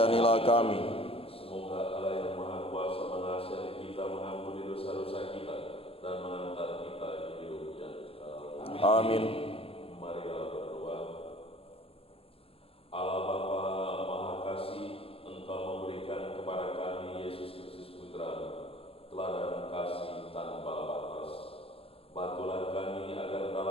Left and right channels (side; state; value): right; late; 0.27 ms